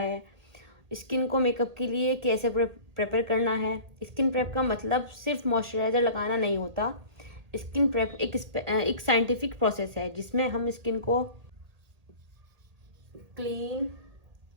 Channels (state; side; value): late; left; 1.8 ms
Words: स्किन को मेकअप के लिए कैसे प्रेपर करना है। स्किन प्रेप का मतलब सिर्फ मॉइस्चराइजर लगाना नहीं होता। स्किन प्रेप एक साइंटिफिक प्रोसेस है जिसमें हम स्किन को क्लीन,